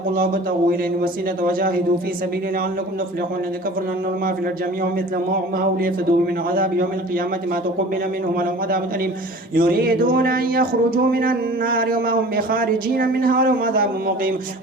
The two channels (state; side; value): normal; both; correlation 0.43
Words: الله وابتغوا إليه الوسيلة وجاهدوا في سبيله لعلكم تفلحون الذين كفروا أن ما في الأرض جميعا مثل معه ليفتدوا من عذاب يوم القيامة ما تقبل منهم ولهم عذاب أليم يريدون أن يخرجوا من النار وما هم بخارجين منها ولهم عذاب مقيم